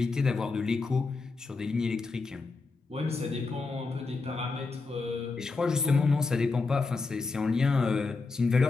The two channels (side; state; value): right; quieter; 4.0 dB